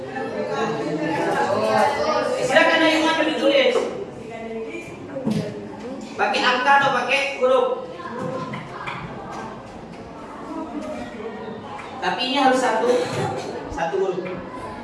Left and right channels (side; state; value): both; identical; correlation 1.00